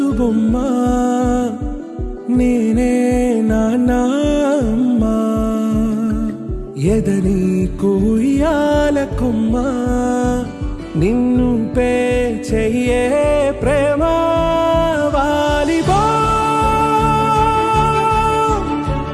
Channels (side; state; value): both; identical; correlation 1.00